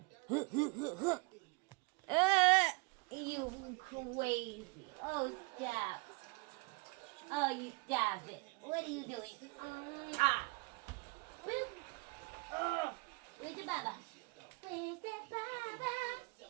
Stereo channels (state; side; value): quieter; left; 28.1 dB